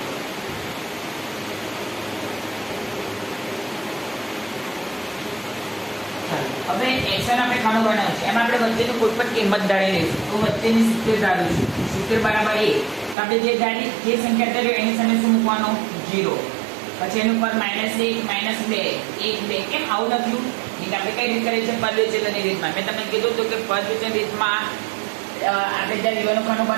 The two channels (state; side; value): drops out; left; at 13.2 s